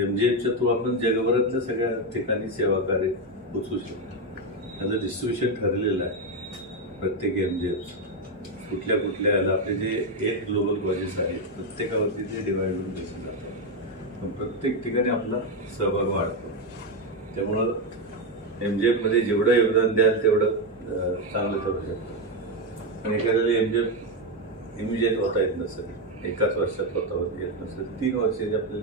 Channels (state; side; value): normal; both; correlation 0.08